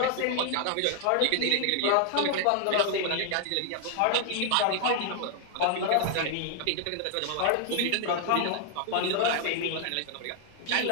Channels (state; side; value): different; both; correlation 0.00